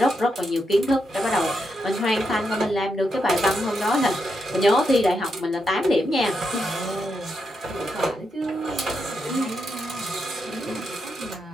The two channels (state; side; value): normal; both; correlation 0.83